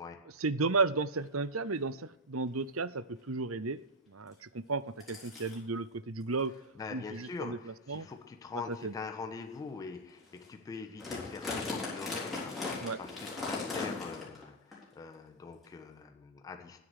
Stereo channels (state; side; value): normal; both; correlation -0.04